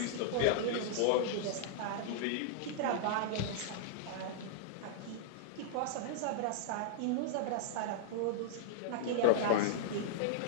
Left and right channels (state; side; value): different; both; correlation -0.01